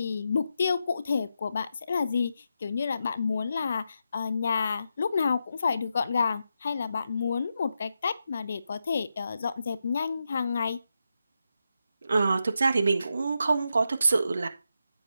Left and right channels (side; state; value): both; inverted; correlation -0.86